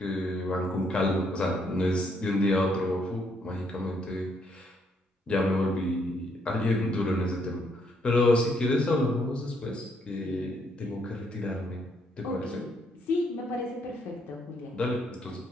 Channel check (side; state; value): both; normal; correlation 0.72